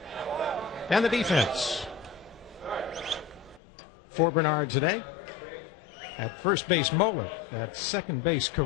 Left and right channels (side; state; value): right; drops out; at 3.6 s